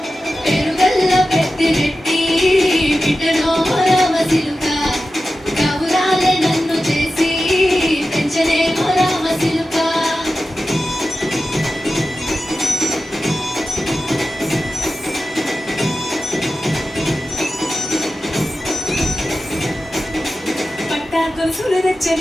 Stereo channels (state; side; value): normal; both; correlation 0.93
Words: పెరుగల్లా పెత్తిరెట్టి బిడ్డలో రామసిలుక కవురాలే నన్ను చేసి పెంచనే రామసిలుక పట్టా గొలుసులు